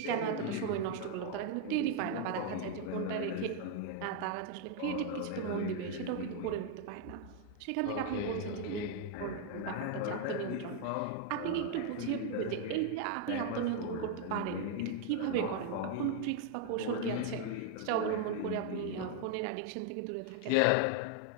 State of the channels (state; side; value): different; both; correlation 0.00